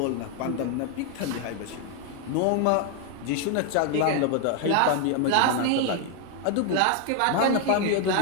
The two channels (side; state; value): both; different; correlation 0.00